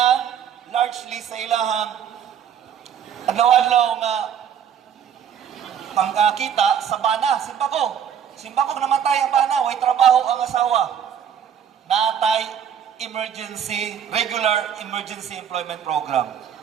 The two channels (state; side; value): quieter; left; 8.6 dB